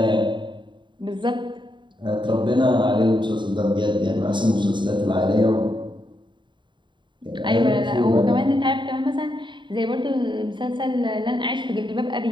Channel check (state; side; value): late; left; 0.23 ms